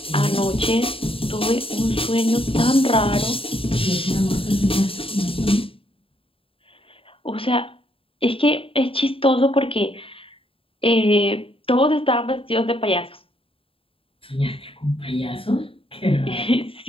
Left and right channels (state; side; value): late; right; 0.27 ms